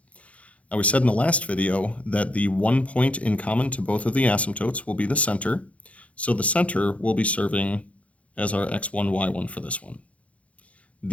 Now, we said in the last video that the one point in common to both of the asymptotes will be the center, so the center will be serving as our x1, y1 for this one.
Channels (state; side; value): late; right; 0.065 ms